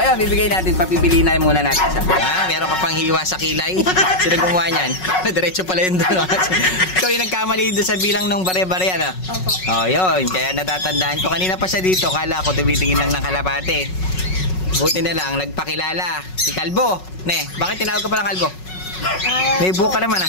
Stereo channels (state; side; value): late; right; 5.4 ms